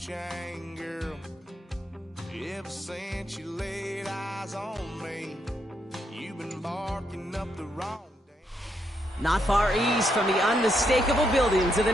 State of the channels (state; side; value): normal; both; correlation 0.78